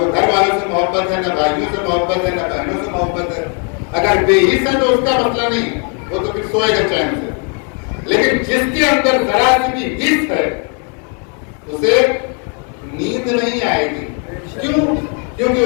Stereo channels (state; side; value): quieter; right; 39.4 dB